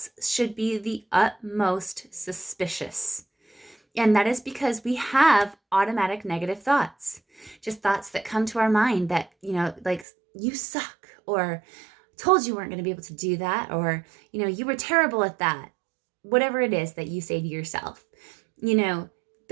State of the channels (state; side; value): drops out; left; at 10.1 s